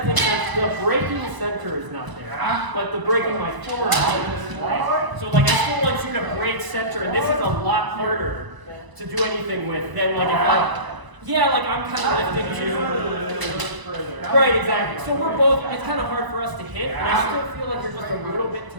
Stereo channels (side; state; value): left; late; 1.0 ms